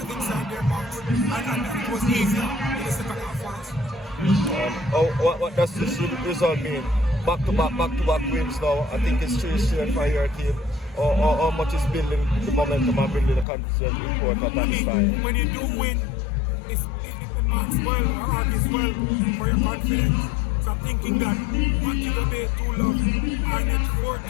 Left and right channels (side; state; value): right; drops out; at 13.5 s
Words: inside their box, and it was easier in the second half for us. What does this result mean? Back-to-back wins now. I think it's 3 straight for your team. Or how much is building the momentum and building the confidence important at that time? When you do win, it marks well or argues well for your confidence. So I'm thinking that Montego Bay 2 love, Arnett